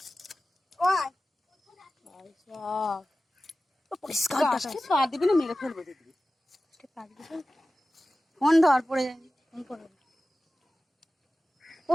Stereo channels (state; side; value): normal; both; correlation 0.95